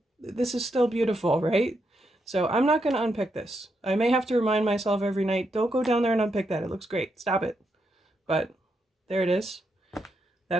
this is still beautiful, right? So I'm not going to unpick this. I may have to remind myself every night, don't go down there and unpick that. It looks great. Stop it. But there it is.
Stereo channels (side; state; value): both; normal; correlation 0.81